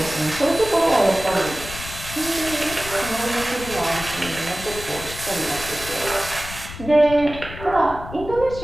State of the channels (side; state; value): left; noise; rumble, 12 dB below the sound